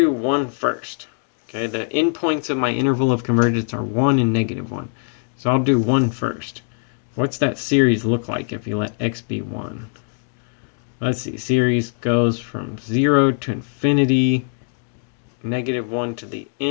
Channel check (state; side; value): silent; right; 62 dB below the other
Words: 1 first. Okay, the endpoints of my interval of convergence are 1 and negative 1. So I'll do 1 first. What's that series look like if you let x be 1? let's see, series goes from 0 to infinity, -1 to the